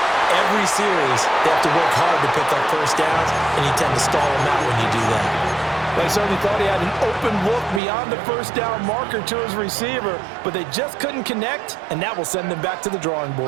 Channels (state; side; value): drops out; left; at 7.8 s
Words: every series they have to work hard to pick up first downs, and you tend to stall them out when you do that. They certainly thought he had an open look beyond the first down marker to his receiver, but they just couldn't connect, and that will send them back to the drawing